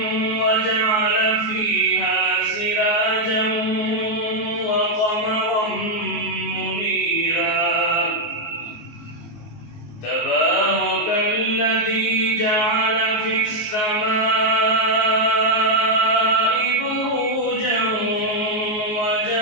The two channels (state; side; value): late; right; 19 ms